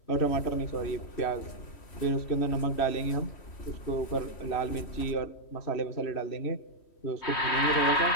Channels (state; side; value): late; right; 3.1 ms